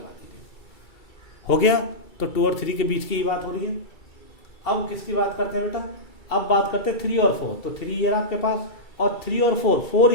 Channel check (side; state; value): right; late; 2.3 ms